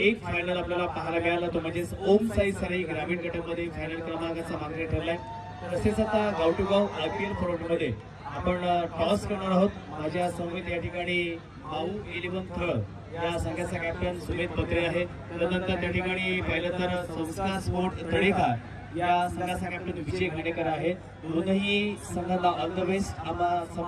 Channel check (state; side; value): identical; both; correlation 1.00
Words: फायनल आपल्याला पाहायला मिळाला, तो म्हणजे ओम साई सराई ग्रामीण गटामध्ये फायनल क्रमांकाचा मागणी ठरलाय. तसेच आता गाव टू गाव IPL फॉर्मॅटमध्ये आपण टॉस करणार आहोत. माझ्या समवेत या ठिकाणी माऊ 11 थळ या संघाचा कॅप्टन सुमेध पत्रे आहे. त्यानंतर त्या ठिकाणी पाहिलं तर संस्कार स्पोर्ट तळेका या संघाचा कॅप्टन विजय घाणेकर आहे. दोनही संघाला ऑल द बेस्ट आम्हा